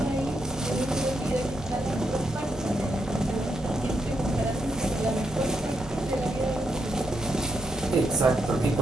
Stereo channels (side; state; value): both; normal; correlation 0.82